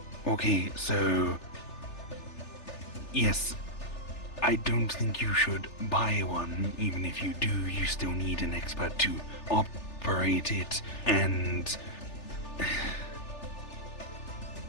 Okay, so... Yes, I don't think you should buy one. Even if you do, you still need an expert to operate it, and...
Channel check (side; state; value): right; late; 3.4 ms